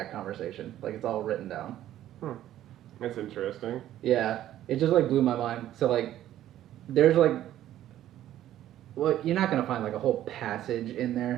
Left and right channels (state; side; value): quieter; left; 12.6 dB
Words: conversation. Like it's all written down. That's interesting. Yeah, it just like blew my mind. So like there's like well, you're not gonna find like a whole passage in